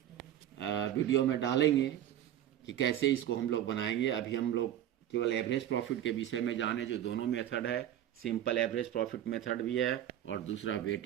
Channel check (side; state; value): left; quieter; 11.5 dB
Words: वीडियो में डालेंगे कि कैसे इसको हम लोग बनाएंगे। अभी हम लोग केवल एवरेज प्रॉफिट के विषय में जाने, जो दोनों मेथड है, सिंपल एवरेज प्रॉफिट मेथड भी है और दूसरा